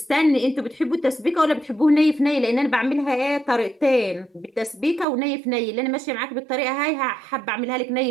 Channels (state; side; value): drops out; left; at 5.1 s